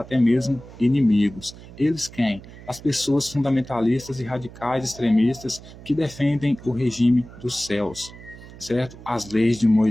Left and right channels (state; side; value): noise; right; hum, 18 dB below the sound